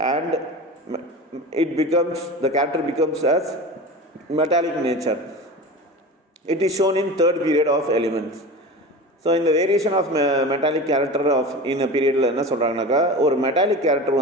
and the character becomes as metallic nature. It is shown in third period of elements. So இந்த variation of metallic character of in பீரியடில் என்ன சொல்கிறாங்கனாக்கா, ஒரு metallic character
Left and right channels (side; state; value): both; normal; correlation 0.31